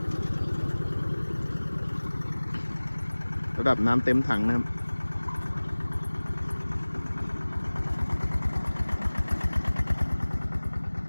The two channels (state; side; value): inverted; both; correlation -1.00